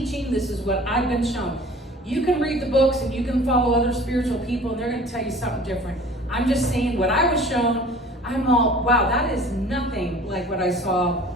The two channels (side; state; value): both; normal; correlation 0.46